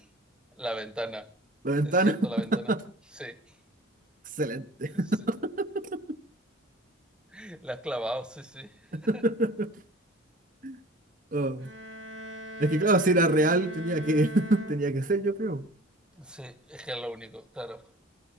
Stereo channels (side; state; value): both; normal; correlation 0.44